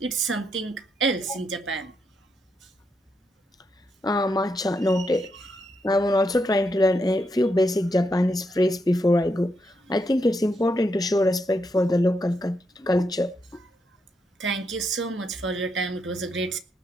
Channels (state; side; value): normal; both; correlation 0.81